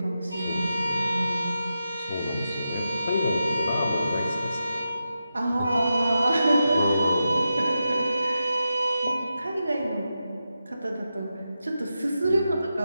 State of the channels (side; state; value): both; inverted; correlation -0.88